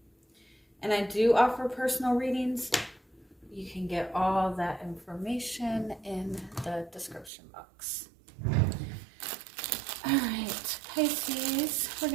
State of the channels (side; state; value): left; drops out; at 7.3 s